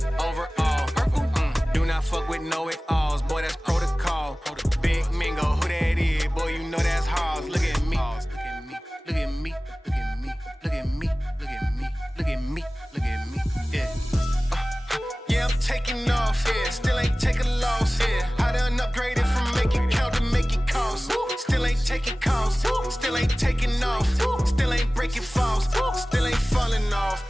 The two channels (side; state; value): both; normal; correlation 0.98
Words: overall, purple. Do not fuck with know it alls, boy, that's protocol. Big Mingo, who that is? Boy, you know that's Halls. Look at me, look at me, look at me, look at me, look at me, look at me, look at me, yeah. Yeah, I'm taking off, yeah. Still ain't taking loss, yeah. I done upgraded from make it count to make it cost. Still ain't taking calls, still ain't taking off. Still ain't breaking falls, still ain't falling off.